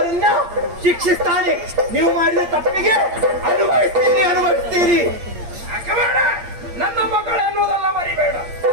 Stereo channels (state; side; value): late; left; 8.6 ms